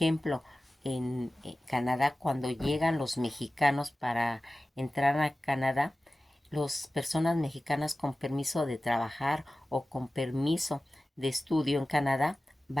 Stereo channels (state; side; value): normal; both; correlation 0.96